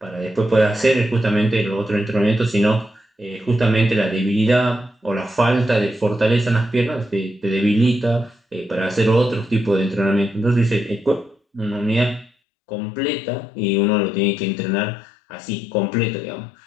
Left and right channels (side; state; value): right; drops out; at 12.3 s